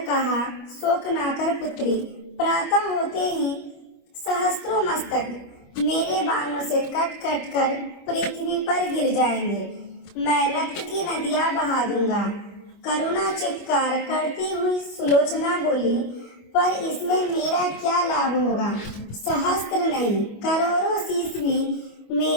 कहा, शोक ना कर पुत्री, प्रातः होते ही सहस्त्रों मस्तक मेरे बाणों से कट कट कर पृथ्वी पर गिर जाएंगे। मैं रक्त की नदियां बहा दूंगा। करुणा चित्कार करती हुई सुलोचना बोली, पर इसमें मेरा क्या लाभ होगा? सहस्त्र नहीं, करोड़ों शीश भी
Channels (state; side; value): late; right; 25 ms